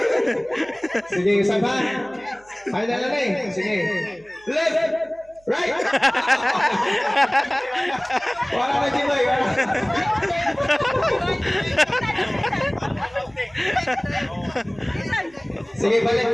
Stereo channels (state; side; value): noise; right; hum, 30 dB below the sound